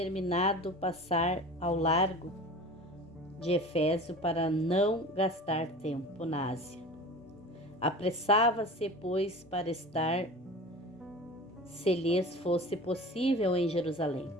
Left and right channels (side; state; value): both; normal; correlation 0.36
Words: passar ao largo de Éfeso para não gastar tempo na Ásia. Apressava-se, pois, para estar, se lhes fosse possível, em Jerusalém,